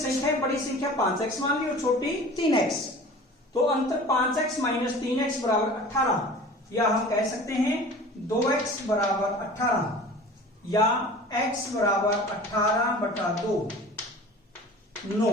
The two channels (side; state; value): both; normal; correlation 0.41